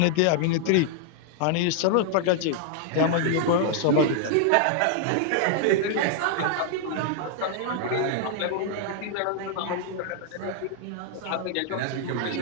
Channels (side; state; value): both; different; correlation 0.00